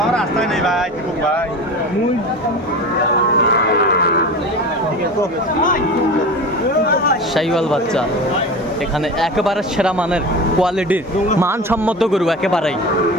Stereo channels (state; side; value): normal; both; correlation 0.31